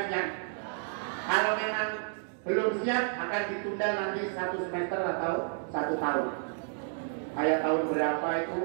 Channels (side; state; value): left; silent; 57 dB below the other